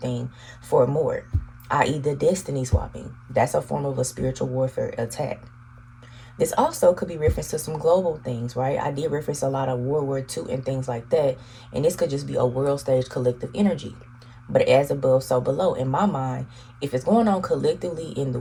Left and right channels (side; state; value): both; identical; correlation 1.00